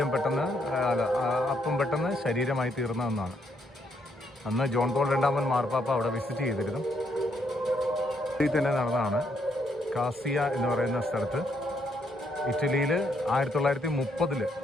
അപ്പം പെട്ടെന്ന് ശരീരമായി തീർന്നതെന്നാണ്. അന്ന് ജോൺ പോൾ രണ്ടാമൻ മാർപ്പാപ്പ അവിടെ വിസിറ്റ് ചെയ്തിരുന്നു. ഇതിൽ തന്നെ നടന്നതാണ്. കാസിയ എന്ന് പറയുന്ന സ്ഥലത്ത് ഇറ്റലിയിൽ 1930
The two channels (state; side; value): normal; both; correlation 0.73